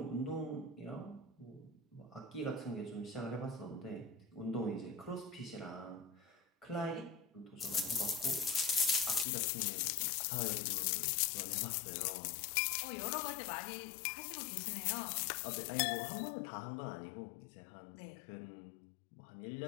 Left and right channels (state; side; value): drops out; right; at 9.2 s